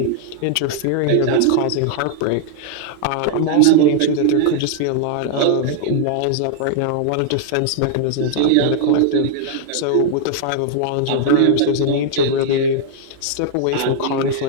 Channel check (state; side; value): different; both; correlation 0.00